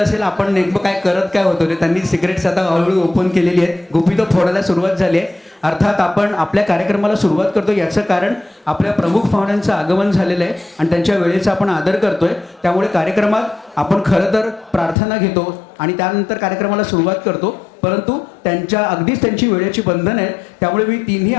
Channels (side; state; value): right; drops out; at 15.0 s